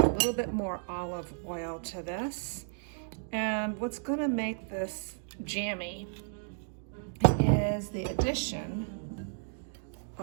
little bit more olive oil to this. And what's going to make this jammy is the addition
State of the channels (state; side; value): silent; left; digital silence